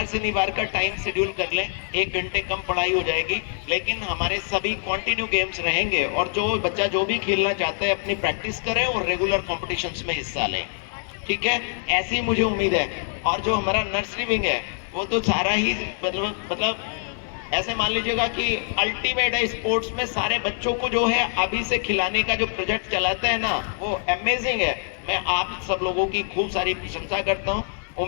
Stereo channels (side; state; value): right; silent; digital silence